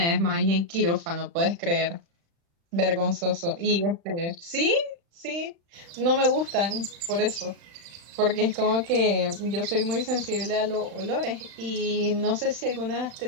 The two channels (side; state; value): left; late; 35 ms